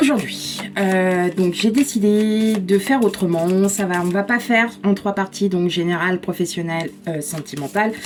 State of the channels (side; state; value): both; identical; correlation 1.00